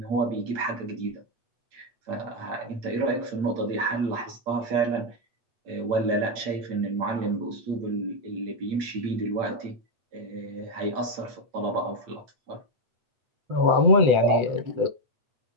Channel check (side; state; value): left; late; 8.7 ms